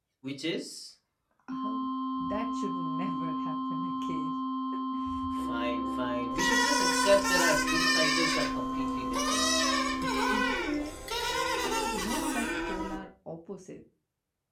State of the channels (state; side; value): identical; both; correlation 1.00